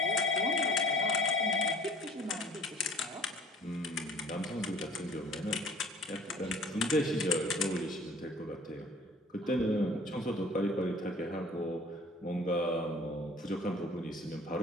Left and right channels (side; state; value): both; normal; correlation 0.50